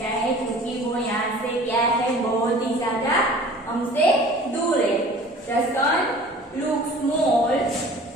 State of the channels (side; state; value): both; normal; correlation 0.46